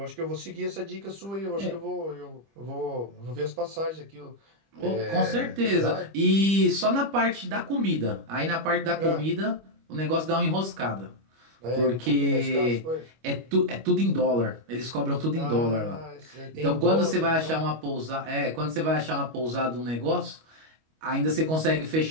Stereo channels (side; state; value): left; late; 25 ms